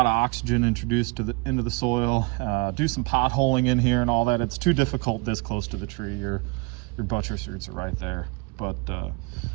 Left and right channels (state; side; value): quieter; left; 28.2 dB